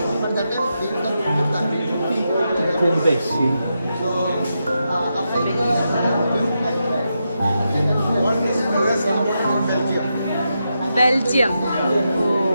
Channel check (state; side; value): inverted; both; correlation -0.86